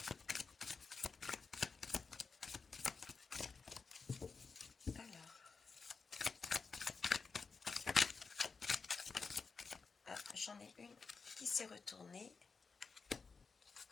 Alors, j'en ai une qui s'est retournée.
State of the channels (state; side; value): quieter; right; 4.8 dB